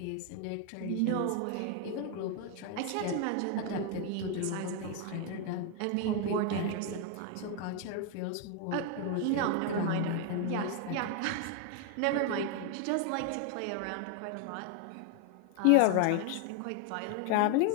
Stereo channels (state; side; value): different; both; correlation 0.00